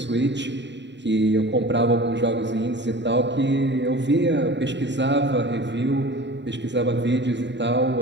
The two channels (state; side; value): late; left; 0.52 ms